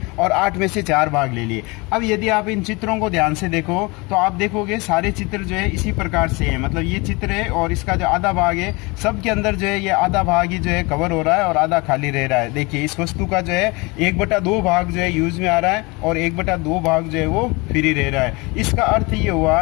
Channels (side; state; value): right; quieter; 26.2 dB